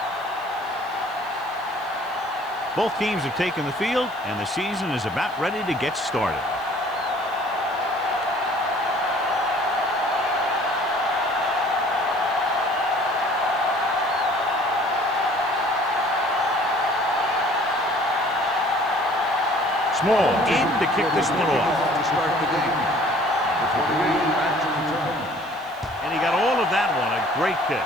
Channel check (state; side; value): noise; right; hiss, 25 dB below the sound